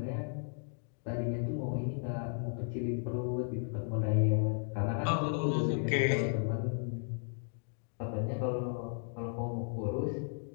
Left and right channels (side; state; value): right; silent; 55 dB below the other